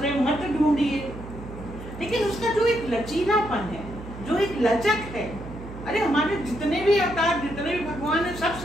मत ढूंढिए, लेकिन उसका जो एक लचीलापन है, जो एक लचक है, अरे हमारे जितने भी अवतार, जितने भी भगवान है, सब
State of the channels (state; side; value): noise; right; hum, 12 dB below the sound